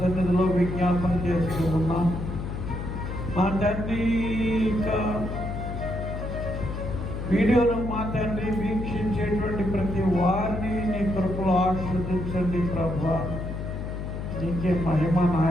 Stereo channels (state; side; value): noise; left; hum, 5 dB below the sound